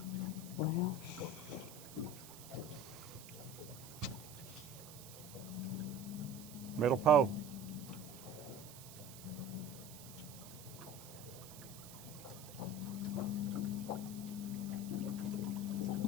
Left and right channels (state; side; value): noise; right; hiss, 15 dB below the sound